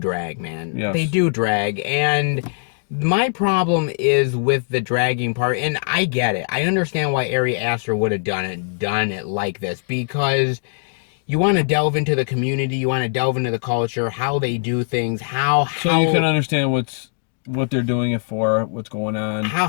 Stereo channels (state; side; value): silent; right; digital silence